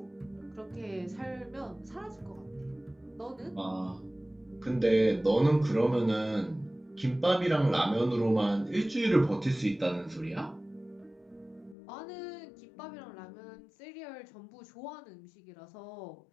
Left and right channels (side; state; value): right; drops out; at 11.8 s